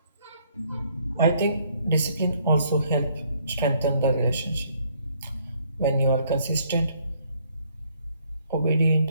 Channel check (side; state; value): both; inverted; correlation -0.66